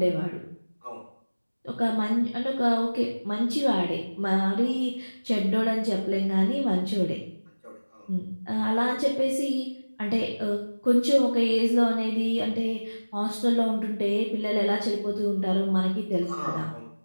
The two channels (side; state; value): both; inverted; correlation -1.00